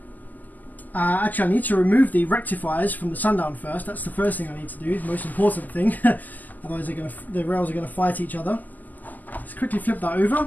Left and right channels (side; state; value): right; late; 0.083 ms